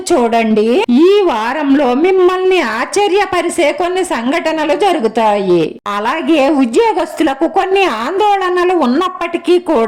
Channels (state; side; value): identical; both; correlation 1.00